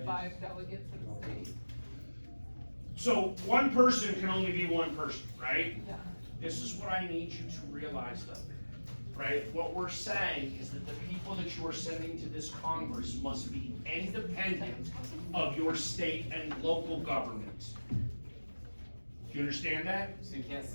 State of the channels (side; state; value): both; inverted; correlation -1.00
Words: 5 delegates in the state. So one person can only be one person, right? Yeah. This is what I need you to realize though, right? What we're saying is that the people that you are sending to this Congress must be independent of your state and local government. Do you understand that? So you can't